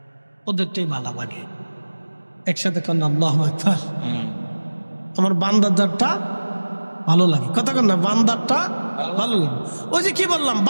ওদেরটাই ভালো লাগে। একসাথে কর না আল্লাহু আকবার। আমার বান্দারটা ভালো লাগে, কথা কর না, বান্দারটা ভালো লাগে। ওই যে কি বললাম,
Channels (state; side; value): inverted; both; correlation -1.00